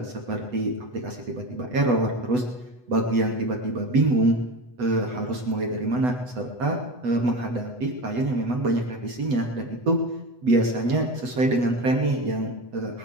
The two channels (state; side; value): late; left; 8.0 ms